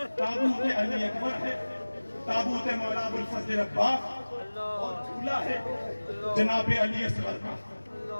ताबूत अली अकबर है, ताबूत मौला अबुल फजल अब्बास, और झूला है जनाब अली असगर का।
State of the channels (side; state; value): both; inverted; correlation -1.00